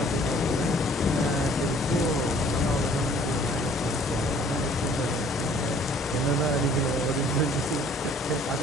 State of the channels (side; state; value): both; normal; correlation 0.56